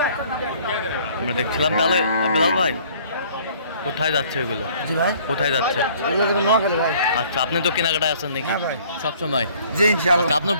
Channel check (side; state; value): both; inverted; correlation -0.56